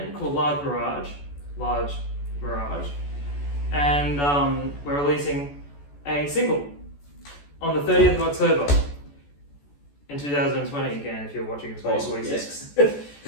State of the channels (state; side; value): late; right; 14 ms